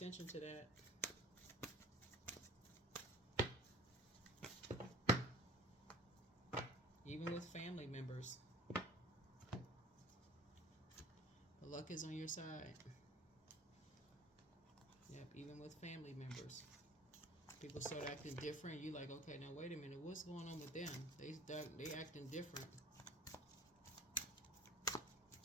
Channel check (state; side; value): normal; both; correlation 0.44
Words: to that. Even with family members. The luck is on your side. Yep, even with family members. People start acting different. You like, okay, now wait a minute. What's going on with them? They acting different.